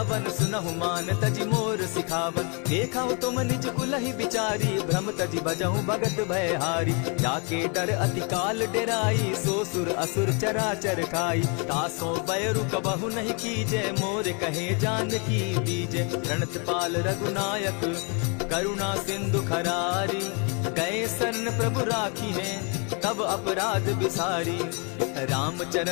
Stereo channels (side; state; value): right; quieter; 34.9 dB